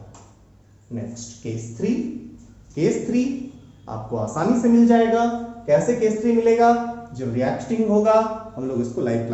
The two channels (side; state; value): both; identical; correlation 1.00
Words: Next case 3। केस 3 आपको आसानी से मिल जाएगा। कैसे केस 3 मिलेगा? जब रिएक्टिंग होगा, हम लोग इसको लाइव